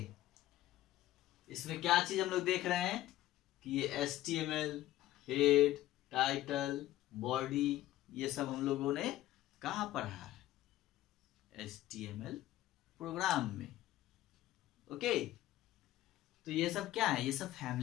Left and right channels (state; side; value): quieter; right; 14.9 dB